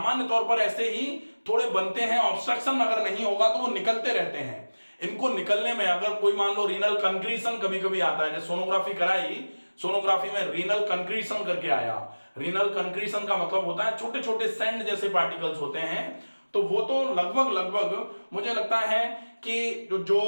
तौर पर ऐसे ही थोड़े बनते हैं, ऑब्स्ट्रक्शन अगर नहीं होगा तो वो निकलते रहते हैं। इनको निकलने में अगर कोई मान लो रीनल कंक्रीशन कभी कभी आता है, जैसे सोनोग्राफी कराई, सोनोग्राफी में रीनल कंक्रीशन करके आया। रीनल कंक्रीशन का मतलब होता है छोटे छोटे सैंड जैसे पार्टिकल्स होते हैं, तो वो तो लगभग मुझे लगता है कि जो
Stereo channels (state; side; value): inverted; both; correlation -1.00